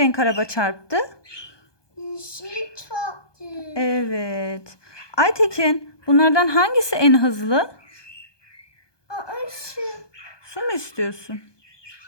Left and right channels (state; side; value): late; right; 1.2 ms